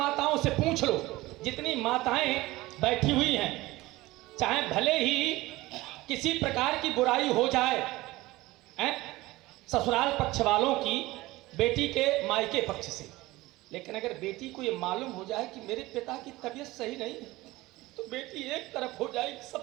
से पूछ लो, जितनी माताएं बैठी हुई हैं, चाहे भले ही किसी प्रकार की बुराई हो जाए, ससुराल पक्ष वालों की बेटी के मायके पक्ष से, लेकिन अगर बेटी को ये मालूम हो जाए कि मेरे पिता की तबीयत सही नहीं है, तो बेटी एक तरफ हो जाएगी,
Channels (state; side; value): quieter; left; 19.2 dB